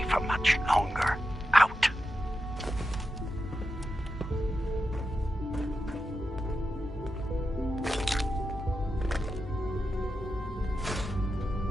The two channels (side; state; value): both; normal; correlation 0.89